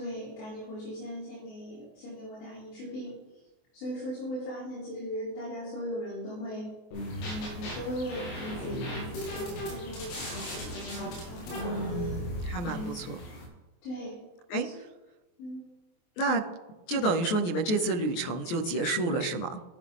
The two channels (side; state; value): right; late; 23 ms